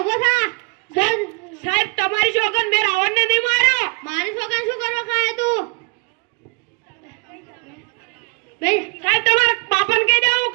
ઉભો થા. સાહેબ તમારી સોગન મેં રાવણને નહીં માર્યો. મારી સોગન શું કરવા ખાય તું? સાહેબ તમારા બાપાને કહી દેવું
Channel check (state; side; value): quieter; left; 33.4 dB